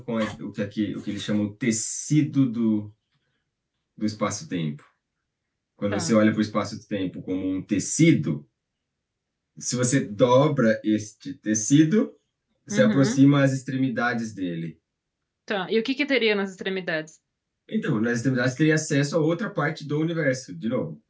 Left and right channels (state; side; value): identical; both; correlation 1.00